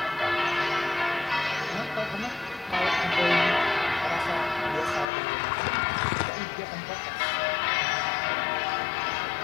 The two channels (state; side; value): drops out; right; at 5.1 s